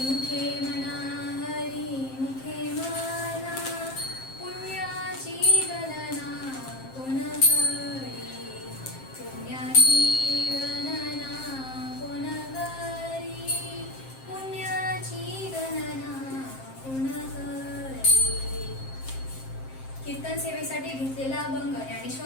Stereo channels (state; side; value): late; right; 7.6 ms